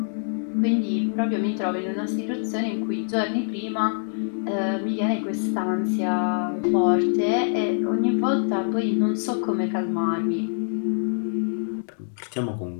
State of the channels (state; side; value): silent; right; digital silence